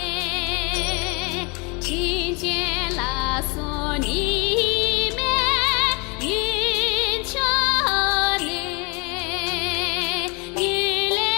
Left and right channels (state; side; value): quieter; right; 30.3 dB